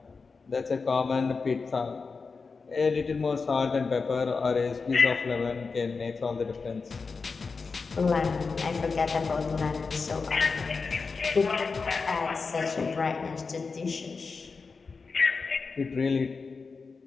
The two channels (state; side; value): quieter; right; 4.6 dB